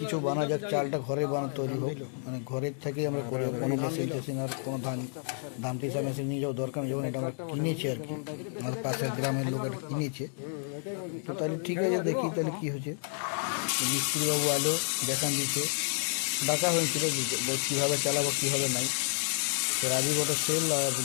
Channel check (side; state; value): right; silent; 58 dB below the other